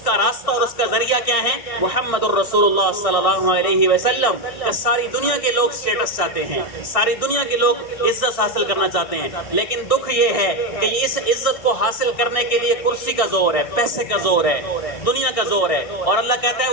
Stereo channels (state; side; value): late; right; 1.6 ms